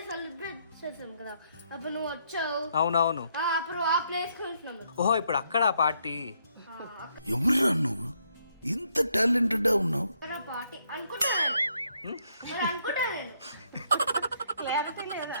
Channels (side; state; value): both; inverted; correlation -0.73